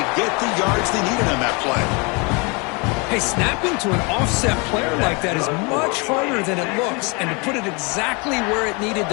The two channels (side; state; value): right; quieter; 30.6 dB